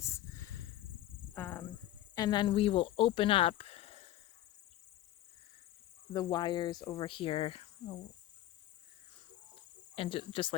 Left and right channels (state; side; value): quieter; right; 14.0 dB